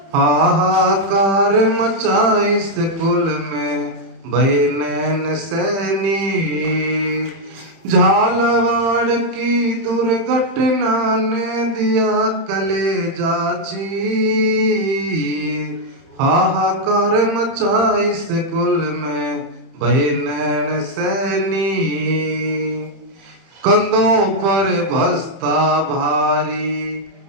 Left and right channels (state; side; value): late; left; 31 ms